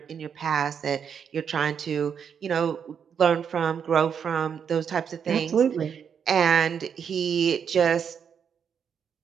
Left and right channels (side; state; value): left; quieter; 7.4 dB